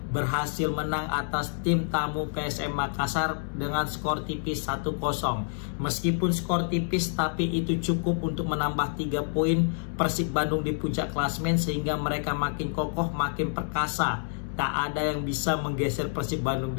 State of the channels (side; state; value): right; silent; digital silence